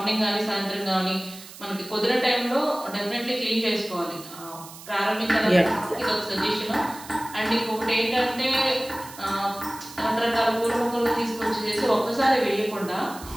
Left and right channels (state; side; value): noise; right; hiss, 16 dB below the sound